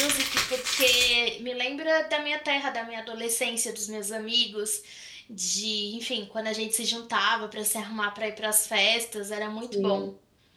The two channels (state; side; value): identical; both; correlation 1.00